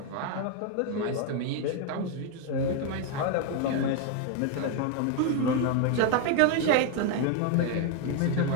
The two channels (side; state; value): both; different; correlation 0.01